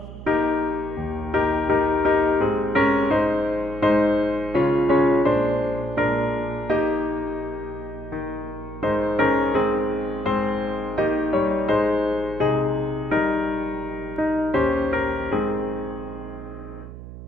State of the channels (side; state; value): right; noise; hum, 13 dB below the sound